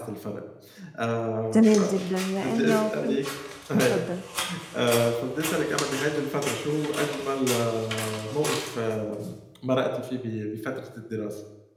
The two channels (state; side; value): identical; both; correlation 1.00